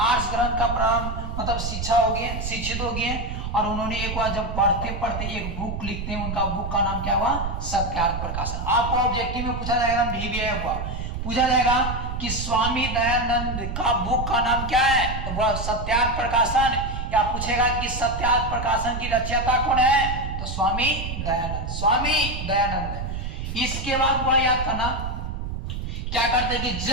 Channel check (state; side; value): noise; right; rumble, 5 dB below the sound